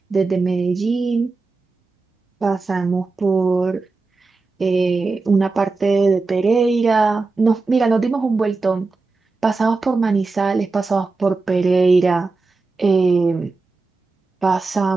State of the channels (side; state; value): left; quieter; 3.8 dB